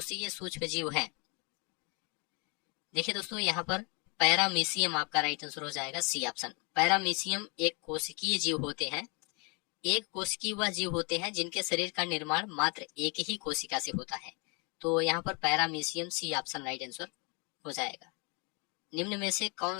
सूक्ष्म जीव है। देखिए दोस्तों, यहाँ पर पैरामीशियम आपका राइट आंसर हो जाएगा, सी ऑप्शन। पैरामीशियम एक कोशिकीय जीव होते हैं। एक कोशिकीय वह जीव होते हैं जिनके शरीर का निर्माण मात्र एक ही कोशिका से होता है। तो यहाँ पर paramecium, C option right answer हो जाएगा। निम्न में से कौन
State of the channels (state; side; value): quieter; right; 32.3 dB